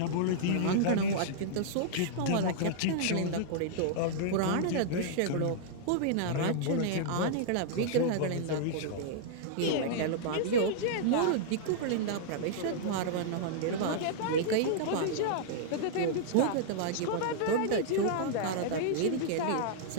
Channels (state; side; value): different; both; correlation -0.02